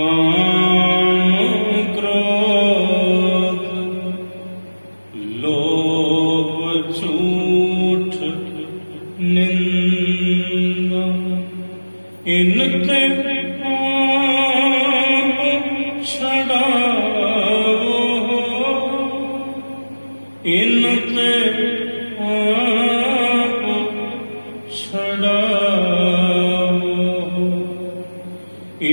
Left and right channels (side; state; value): both; inverted; correlation -1.00